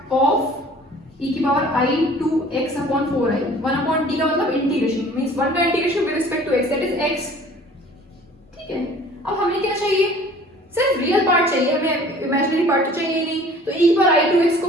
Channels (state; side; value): normal; both; correlation 0.50